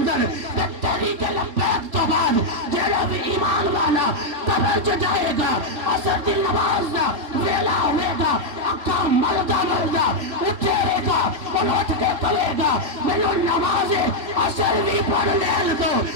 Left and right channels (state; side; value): late; left; 3.7 ms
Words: تحریک لبیک تو بعد جڑا بھی ایمان والا قبر جو جائے گا اثر دی نماز دا ویلا ہوئے گا اکھا مردہ اٹھے گا اور اٹھ کے کلے گا میرے نماز اثر بھی پڑھ لے دو